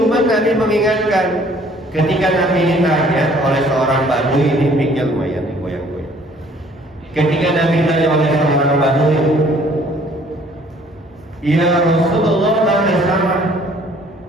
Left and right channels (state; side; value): normal; both; correlation 0.58